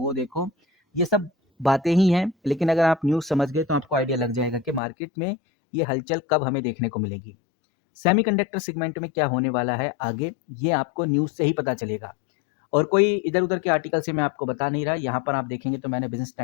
देखो, ये सब बातें ही हैं। लेकिन अगर आप न्यूज़ समझ गए तो आपको आइडिया लग जाएगा कि मार्केट में ये हलचल कब हमें देखने को मिलेगी। सेमीकंडक्टर सेगमेंट में क्या होने वाला है आगे, ये आपको न्यूज़ से ही पता चलेगा। और कोई इधर-उधर के आर्टिकल से मैं आपको बता नहीं रहा। यहाँ पर आप देखेंगे तो मैंने बिज़नेस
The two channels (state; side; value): drops out; right; at 4.8 s